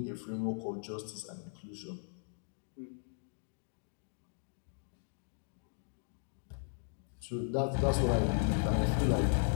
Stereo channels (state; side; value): silent; right; digital silence